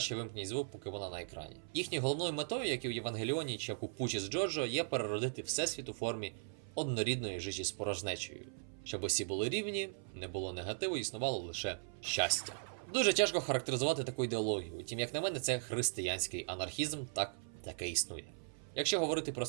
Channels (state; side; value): silent; left; 52 dB below the other